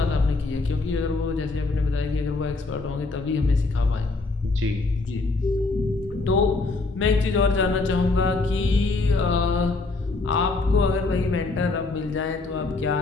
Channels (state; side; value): quieter; right; 3.5 dB